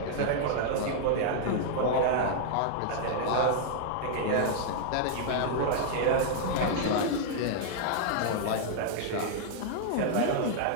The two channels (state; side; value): different; both; correlation -0.01